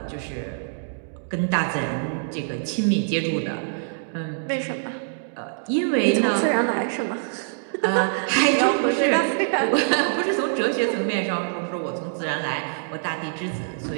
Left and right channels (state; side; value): silent; left; digital silence